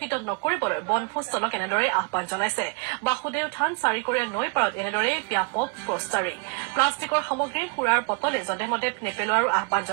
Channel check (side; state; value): left; quieter; 30.1 dB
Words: নকৰিবলৈ বনভোজস্থলক এনেদৰে আহ্বান জনাইছে বাসুদেৱ থান চাৰিকৰীয়া নৈ পাৰত এনেদৰে ব্যাপক পোষ্টাৰিং প্লাষ্টিকৰ সামগ্ৰীৰ সুৰাৰ বটলে যধেমধে নেপেলোৱাৰো আহ্বান